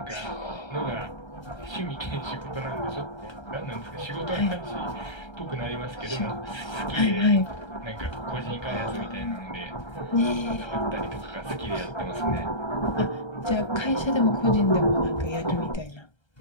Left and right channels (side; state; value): right; late; 1.3 ms